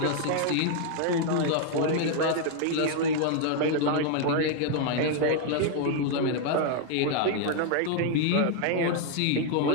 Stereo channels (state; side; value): different; both; correlation 0.00